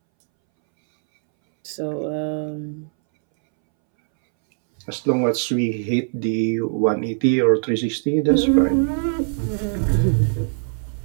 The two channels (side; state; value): left; silent; 64 dB below the other